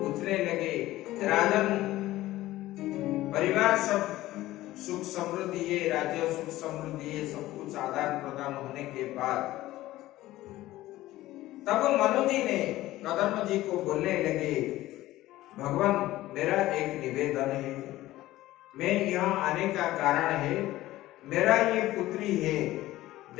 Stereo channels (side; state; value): right; quieter; 16.2 dB